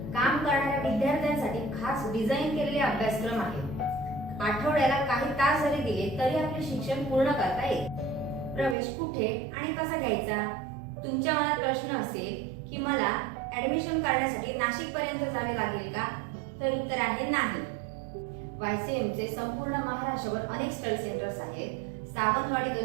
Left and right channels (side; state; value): left; drops out; at 8.8 s